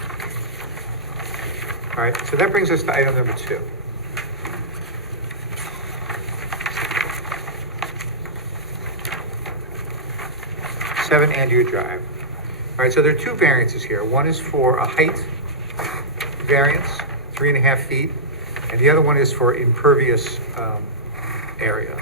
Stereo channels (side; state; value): both; normal; correlation -0.15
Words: All right, so that brings us to item number 2. Seven Andrea Drive. All right, so there are 2 variances here. One is for a height variance, 3.5 feet, and the other one is for impervious area.